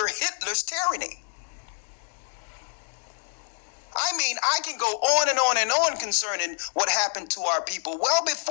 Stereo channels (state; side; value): silent; right; digital silence